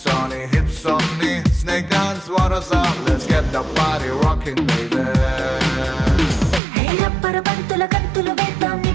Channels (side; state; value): left; drops out; at 6.6 s